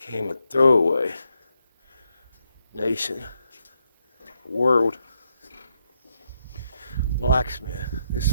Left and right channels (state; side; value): inverted; both; correlation -0.80